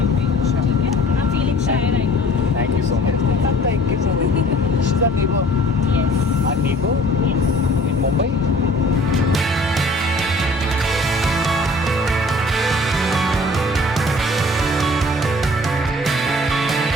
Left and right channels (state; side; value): normal; both; correlation 0.50